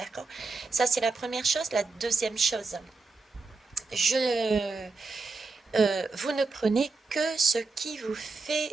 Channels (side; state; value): left; quieter; 3.9 dB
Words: Ça, c'est la première chose. La deuxième chose, vous ne prenez que ce qui vous